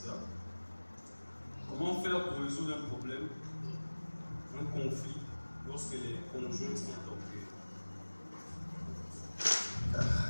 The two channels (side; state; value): both; inverted; correlation -1.00